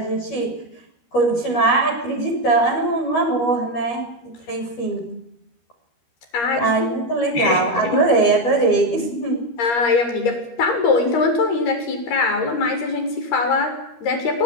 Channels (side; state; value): right; late; 12 ms